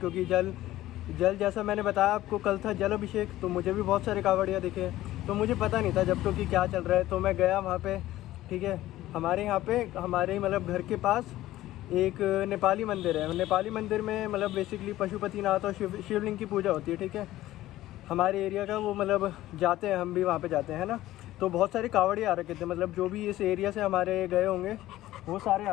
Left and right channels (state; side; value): quieter; right; 15.3 dB